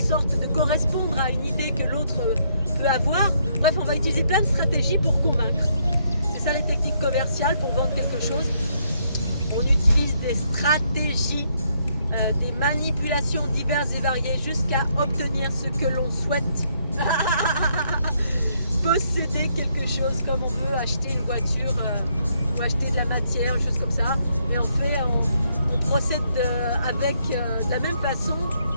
de correspondre à une idée que l'autre peut avoir. Bref, on va utiliser plein de stratégies pour convaincre. C'est ça les techniques commerciales pour vendre quelque chose. On utilise des stratégies, des manipulations diverses et variées jusqu'à obtenir ce que l'on souhaite. Posséder quelque chose, comme on veut acheter une voiture, ou acheter de la matière, des choses comme ça. Et on procède avec de la même façon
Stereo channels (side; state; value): both; inverted; correlation -0.72